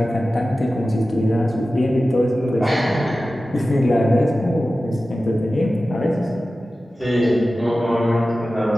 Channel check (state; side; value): normal; both; correlation 0.95